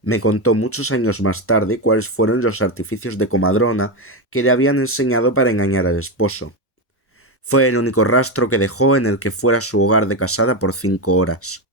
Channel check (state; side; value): normal; both; correlation 0.12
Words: me contó muchos años más tarde cuáles fueron los artificios de comadrona que le habían enseñado para engañar al esposo. Fue el único rastro que dejó en el que fuera su hogar de casada por 5 horas.